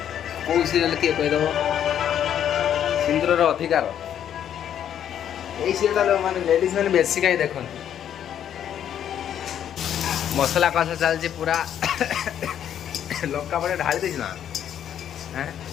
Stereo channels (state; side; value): quieter; right; 9.8 dB